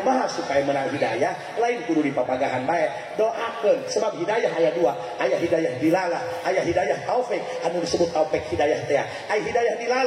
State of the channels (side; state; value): both; identical; correlation 1.00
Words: supaya menang hidayah lain kudu dipapagahan bae. Doakeun sebab hidayah aya 2, aya hidayah dilalah, aya hidayah taufik. Anu disebut taufik hidayah teh aya hidayah